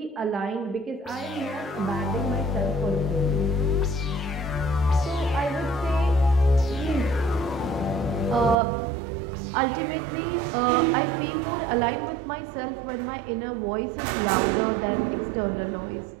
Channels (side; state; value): left; drops out; at 8.6 s